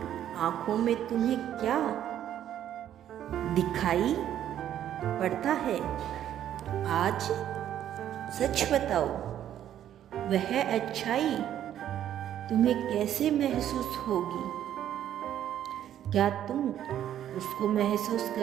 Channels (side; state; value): left; quieter; 10.9 dB